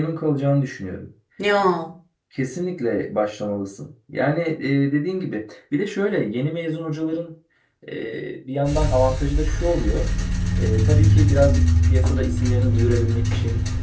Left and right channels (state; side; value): identical; both; correlation 1.00